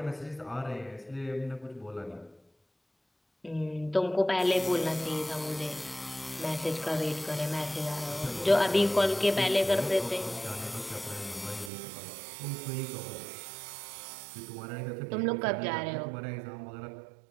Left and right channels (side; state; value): left; drops out; at 11.7 s